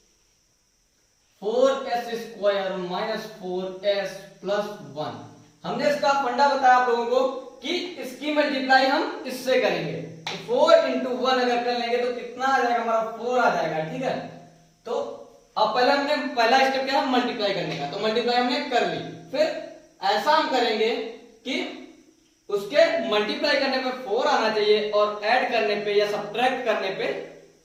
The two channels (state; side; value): identical; both; correlation 1.00